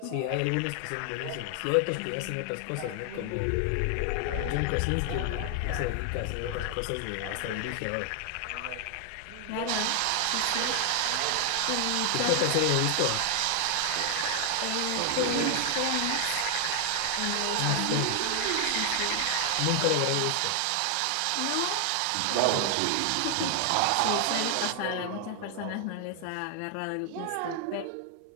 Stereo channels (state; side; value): different; both; correlation 0.00